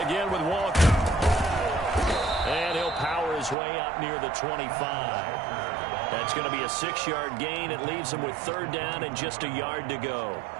with Walker. And he'll power his way up near the 25. That's going to be a 6-yard gain. It leaves him with 3rd down and just a yard to go.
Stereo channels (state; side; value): drops out; left; at 3.6 s